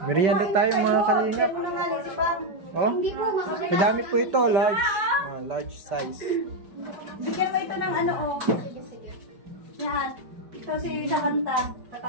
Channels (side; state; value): left; late; 5.1 ms